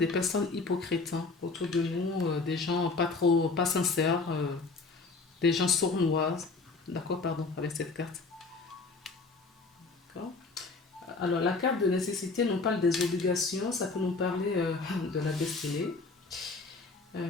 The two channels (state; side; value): quieter; right; 4.0 dB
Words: personnes hypocrites hein, autour de nous, des gens pas sincères, des gens sournois. D'accord, pardon, avec cette carte. D'accord. Alors, la carte de nécessité nous parle des obligations, ça peut nous parler de la destinée.